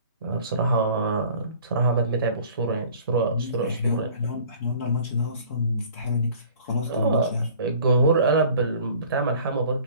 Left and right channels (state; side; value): inverted; both; correlation -0.50